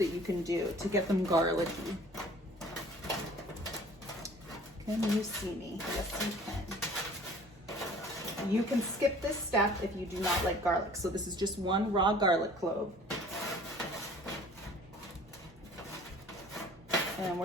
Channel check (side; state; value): both; normal; correlation 0.50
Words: you can do to get them garlicky. Can you see me? Yes, you can. You can skip this step if you do not like garlic. So this is just one raw garlic clove. And